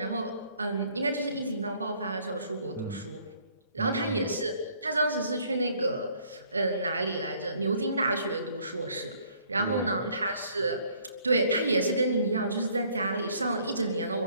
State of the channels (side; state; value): both; inverted; correlation -0.62